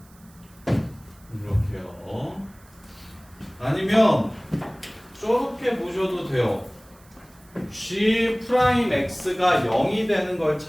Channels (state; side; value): noise; right; hiss, 28 dB below the sound